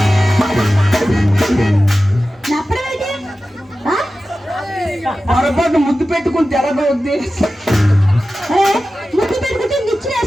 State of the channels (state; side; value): normal; both; correlation 0.94